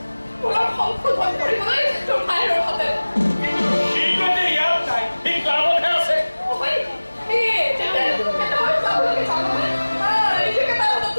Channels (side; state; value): both; inverted; correlation -1.00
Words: সংশোধন কৰিবলৈ তোৰ ভাইৰ হাতে শীঘ্ৰতে ইয়াত নাই এই ক্লাবতহে আছে